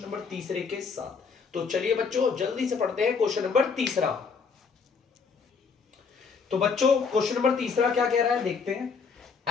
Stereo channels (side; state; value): right; quieter; 5.4 dB